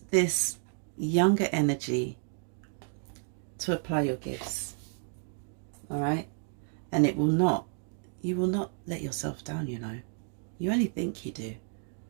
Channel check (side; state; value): left; silent; 57 dB below the other